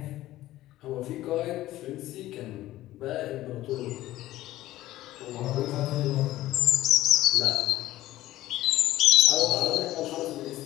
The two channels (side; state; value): right; quieter; 15.5 dB